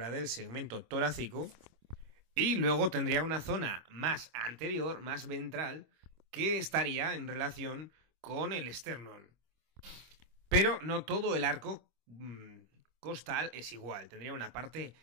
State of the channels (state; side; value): late; left; 25 ms